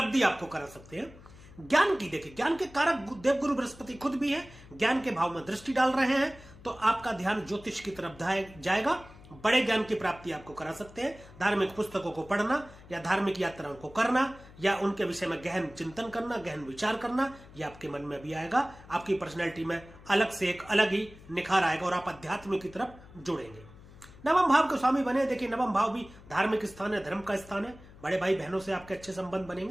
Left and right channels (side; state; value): left; noise; hum, 20 dB below the sound